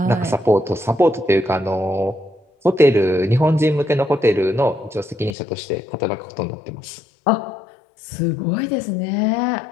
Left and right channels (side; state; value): right; drops out; at 5.4 s